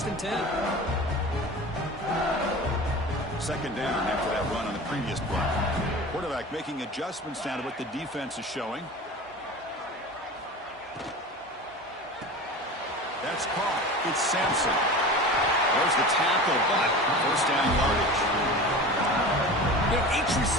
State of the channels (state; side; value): normal; both; correlation 0.34